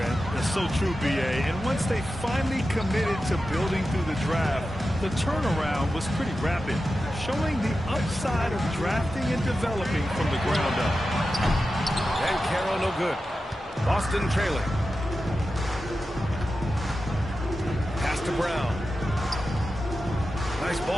That's so true, B.A. And once they finally committed to building through the draft, the turnaround was pretty rapid, showing the upside of drafting and developing from the ground up. And Carroll no good. Boston trailing. Pass to Brown. Nice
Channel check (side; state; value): both; normal; correlation 0.92